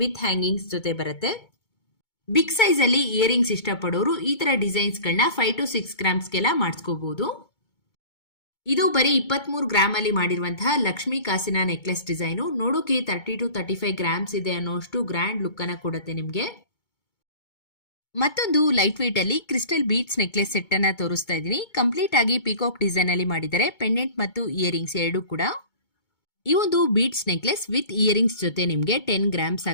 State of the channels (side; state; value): right; late; 2.2 ms